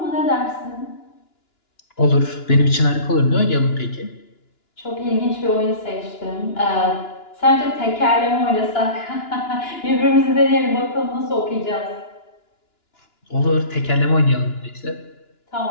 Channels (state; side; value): late; right; 2.9 ms